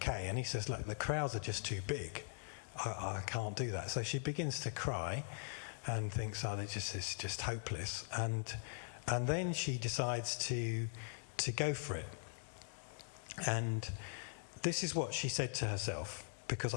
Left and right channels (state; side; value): silent; right; digital silence